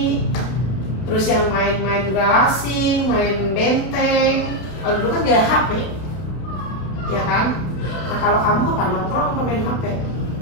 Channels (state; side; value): late; right; 32 ms